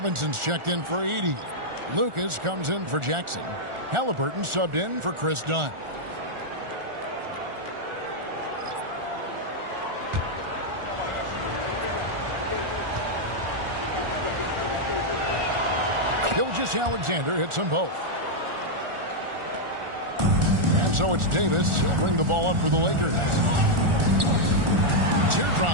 checked in for Edey. Lucas comes in for Jackson. Halliburton subbed in for Chris Dunn. Gilgeous-Alexander hits them both. And so it's Davis. He'll bring the ball up for the Lakers.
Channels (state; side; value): late; left; 1.4 ms